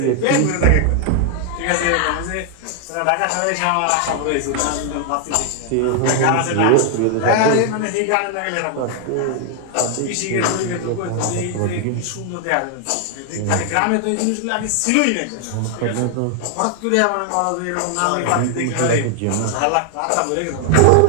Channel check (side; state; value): both; different; correlation 0.00